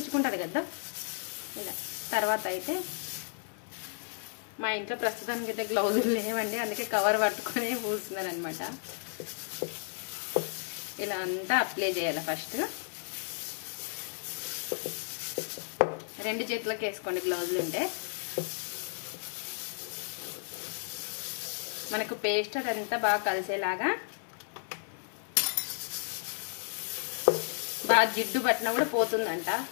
కదా ఇలా. తర్వాత అయితే మా ఇంట్లో ప్రస్తుతానికి అయితే గ్లౌజులు లేవండి, అందుకే కవర్ పట్టుకొని పూస్తున్నారు అనమాట. ఇలా అంతా అప్లై చేయాలి. ఫస్ట్ 2 చేతులకు వేసుకోండి గ్లౌజులు ఉంటే. మనకు పేస్ట్ అదంతా బాగా కలిసేలాగా. బాగా జిడ్డు పట్టినా కూడా పోతుందంట,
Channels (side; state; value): right; silent; 56 dB below the other